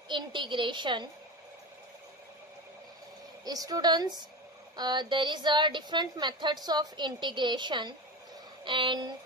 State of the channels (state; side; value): normal; both; correlation 0.24